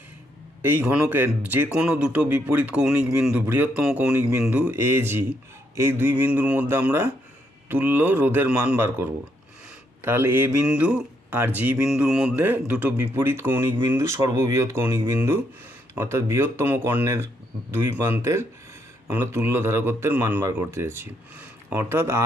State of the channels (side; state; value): both; normal; correlation 0.75